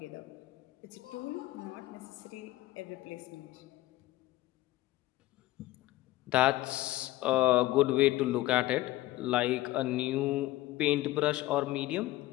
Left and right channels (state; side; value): quieter; right; 16.8 dB